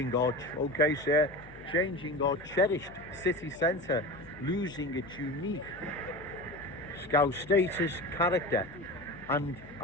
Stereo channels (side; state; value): left; noise; hum, 21 dB below the sound